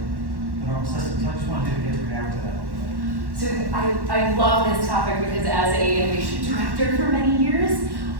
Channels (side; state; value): left; late; 1.1 ms